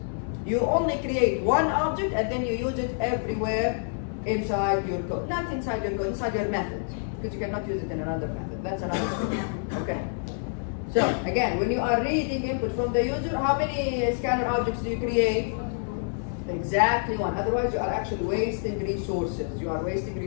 You only create one object and then you use it everywhere inside your code. Not inside your code, inside your method. Because you cannot use it in another method. That's another thing. Okay. So again, when you are reading input from the user, how many scanner objects do you create? Exactly one. Otherwise you are actually wasting resources. You are wasting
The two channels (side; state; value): right; silent; 60 dB below the other